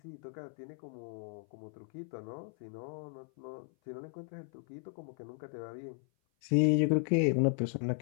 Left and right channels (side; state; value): right; silent; 54 dB below the other